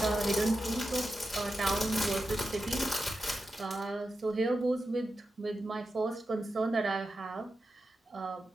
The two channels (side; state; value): both; normal; correlation 0.90